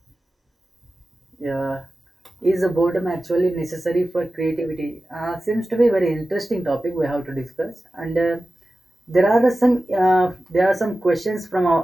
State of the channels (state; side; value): normal; both; correlation 0.94